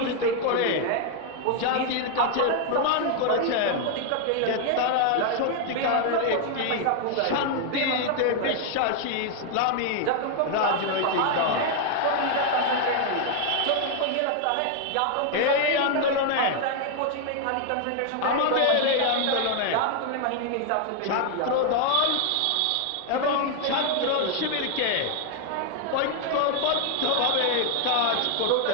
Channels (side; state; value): both; different; correlation 0.00